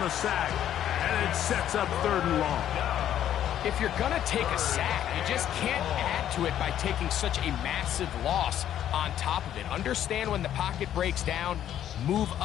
the sack. And it sets up 3rd and long. If you're going to take a sack, you just can't add to it by taking such a massive loss on top of it. Understand when the pocket breaks down, move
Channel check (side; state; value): right; quieter; 10.9 dB